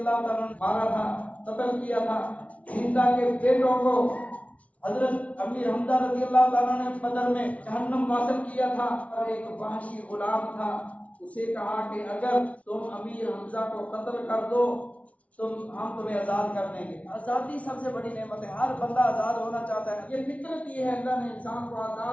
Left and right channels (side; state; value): right; late; 0.066 ms